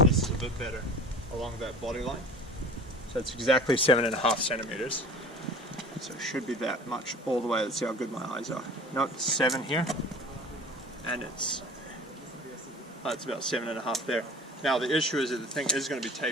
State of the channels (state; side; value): normal; both; correlation 0.42